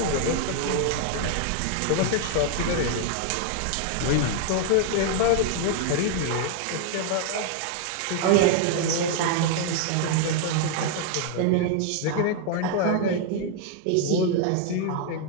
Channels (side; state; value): both; different; correlation 0.00